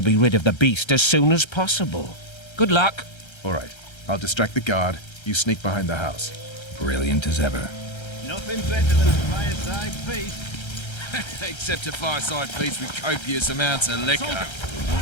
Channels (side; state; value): right; late; 1.3 ms